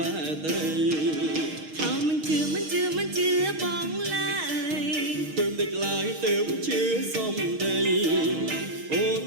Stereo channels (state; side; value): late; left; 6.6 ms